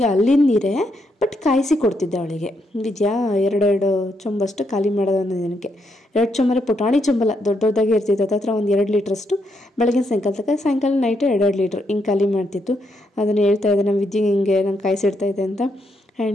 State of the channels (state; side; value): normal; both; correlation 0.78